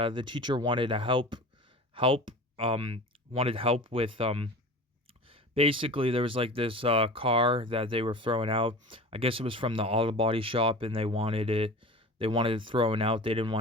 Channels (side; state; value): both; normal; correlation 0.36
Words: the teacher wanted to help wanted help with basically there was like this car that they were throwing out. I guess it was from the auto body shop and they wanted it thrown out. They didn't